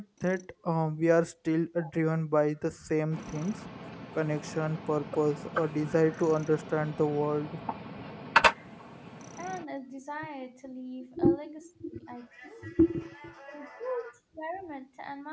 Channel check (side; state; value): both; identical; correlation 1.00